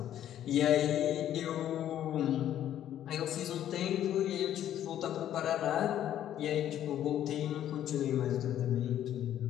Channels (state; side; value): quieter; right; 11.3 dB